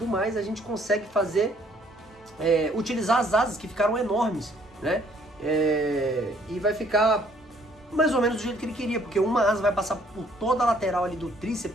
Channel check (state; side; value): normal; both; correlation 0.63